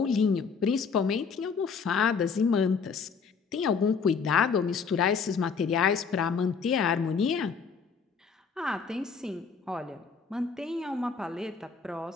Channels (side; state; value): right; quieter; 5.6 dB